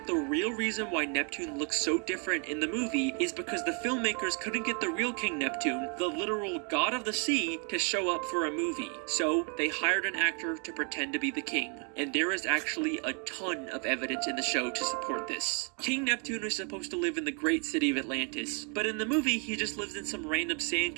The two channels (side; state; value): left; quieter; 38.0 dB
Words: the real reason why Neptune looks so different in the movie is because the filmmakers couldn't get the real King Neptune, the literal god of the sea, to show up for a movie. So they hired an actor to pretend to be the king. And there is actually a ton of evidence in the show to support this. King Neptune is supposed to live in the great city of Atlantis, but in the movie he just lives in some random